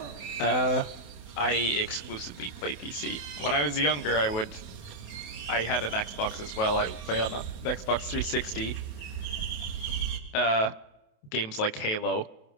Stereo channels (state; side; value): late; right; 28 ms